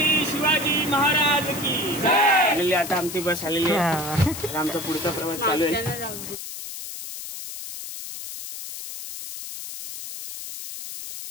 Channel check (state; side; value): noise; left; hiss, 9 dB below the sound